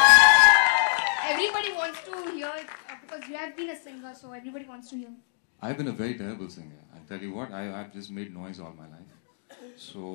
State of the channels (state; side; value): silent; right; digital silence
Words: everybody wants to hear because you have been a singer, so everybody wants to hear. I've been a very terrible singer. I tell you what, I've just made noise all my life.